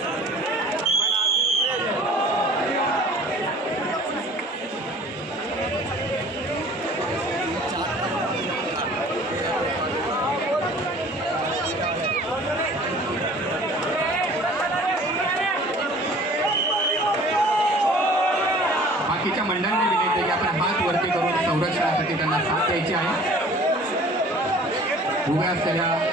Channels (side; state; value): both; normal; correlation 0.49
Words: बाकीच्या मंडळांनी विनंती की आपण हात वरती करून संरक्षणासाठी त्यांना साथ द्यायची आहे। उभ्या असलेल्या